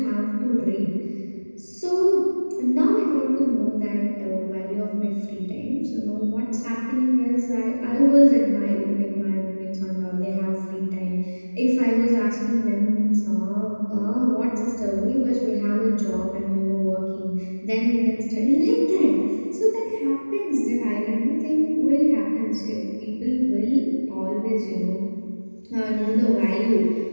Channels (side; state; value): both; inverted; correlation -1.00